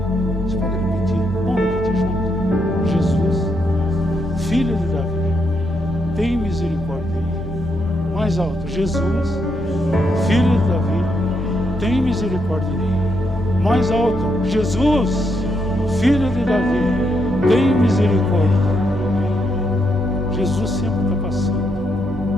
Você pode repetir? Vamos repetir junto. Jesus, filho de Davi, tem misericórdia de mim. Mais alto: Jesus, filho de Davi, tem misericórdia de mim. Mais alto: Jesus, filho de Davi, tem misericórdia. Jesus sempre está passando.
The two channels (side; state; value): both; normal; correlation 0.78